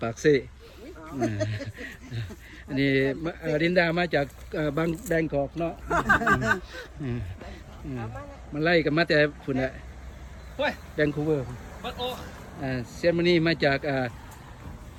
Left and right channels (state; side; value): identical; both; correlation 1.00